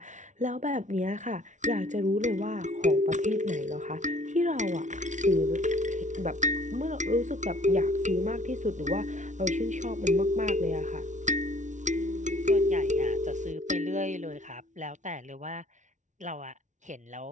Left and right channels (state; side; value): late; left; 0.36 ms